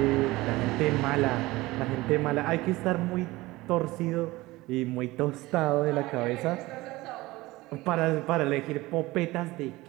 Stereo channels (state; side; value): quieter; left; 19.8 dB